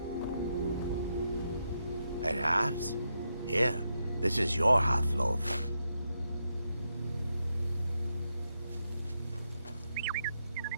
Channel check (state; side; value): inverted; both; correlation -0.83